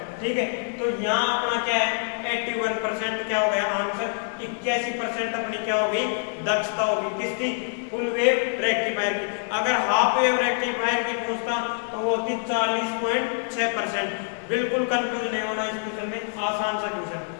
ठीक है, तो यहाँ अपना क्या है 81% क्या हो गया आंसर। 81% अपनी क्या हो गई दक्षता होगी किसकी फुल वेव रेक्टिफायर की। अगर हाफ वेव रेक्टिफायर की पूछता तो वो होती 40.6%। बिल्कुल कंफ्यूज नहीं होना इस क्वेश्चन में, आसान सा क्वेश्चन।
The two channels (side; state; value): right; silent; digital silence